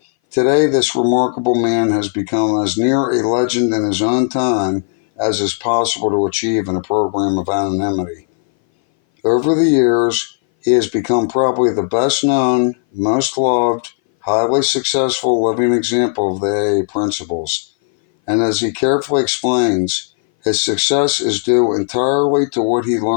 Today, this remarkable man has become as near a legend in his own time as is possible to achieve in a program of anonymity. Over the years, he has become probably the best known, most loved, highly successful living example of the AA principles. And as he carefully explains, His success is due entirely to what he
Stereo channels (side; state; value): right; silent; 60 dB below the other